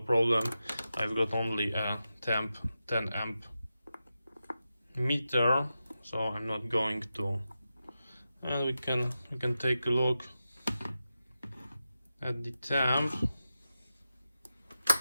I've got only a 10 amp meter, so I'm not going to. And we can take a look at the temp.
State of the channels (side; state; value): both; inverted; correlation -0.91